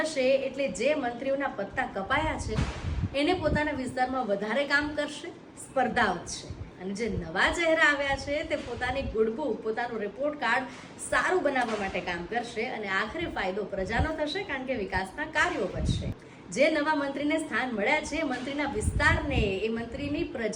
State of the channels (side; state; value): both; identical; correlation 1.00